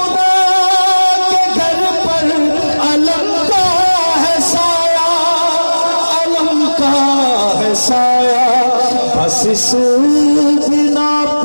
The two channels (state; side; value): inverted; both; correlation -1.00